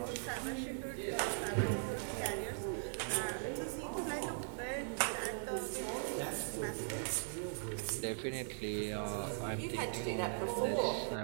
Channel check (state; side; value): silent; left; digital silence